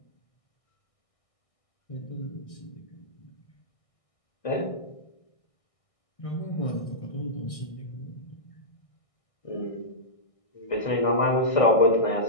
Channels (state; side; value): late; right; 1.6 ms